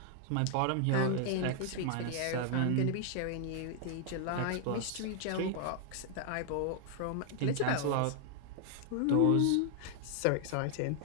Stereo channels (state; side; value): different; both; correlation 0.00